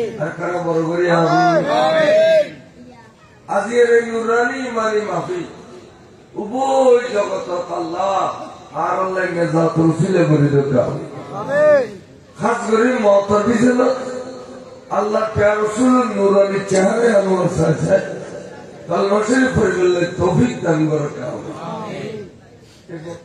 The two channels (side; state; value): both; identical; correlation 1.00